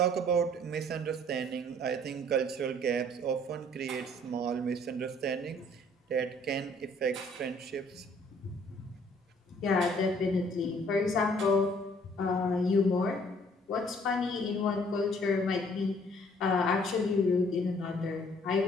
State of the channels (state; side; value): normal; both; correlation 0.59